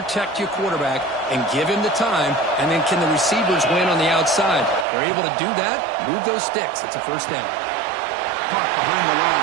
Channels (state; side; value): drops out; left; at 4.9 s